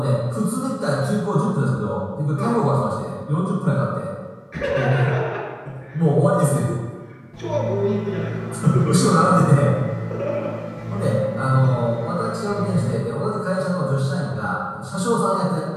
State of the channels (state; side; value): identical; both; correlation 1.00